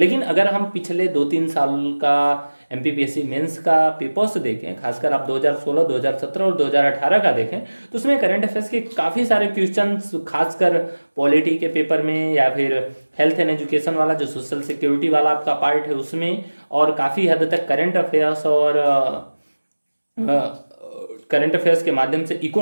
अगर हम पिछले 2-3 साल का एमपीपीएससी मेंस का पेपर्स देखें, खासकर आप 2016, 2017 और 2018 का देखें, तो उसमें करंट अफेयर्स के काफ़ी सारे क्वेश्चंस, खासकर पॉलिटी के पेपर में या फिर हेल्थ एंड एजुकेशन वाला जो सोशल सिक्योरिटी वाला आपका पार्ट है उसमें, और काफ़ी हद तक करंट अफेयर्स और करंट अफेयर्स के माध्यम से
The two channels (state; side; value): inverted; both; correlation -1.00